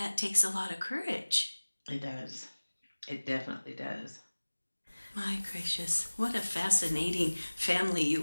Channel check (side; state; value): both; inverted; correlation -1.00